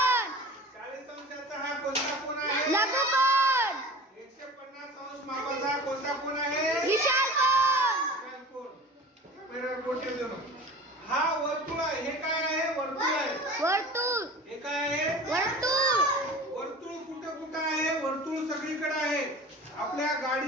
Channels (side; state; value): both; normal; correlation 0.39